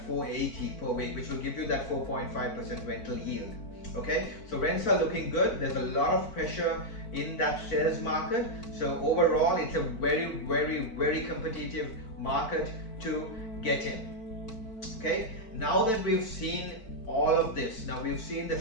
480 per week, which will give you that 4.5% rental yield. Okay, so rents are looking good. There's a lot of pressure in that sales market. So overall, it's a very, very, very competitive market to get in. Okay, now that we've seen all of this, now we've seen the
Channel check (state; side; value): late; right; 4.5 ms